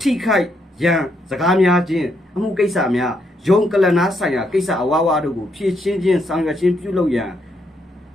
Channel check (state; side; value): normal; both; correlation 0.76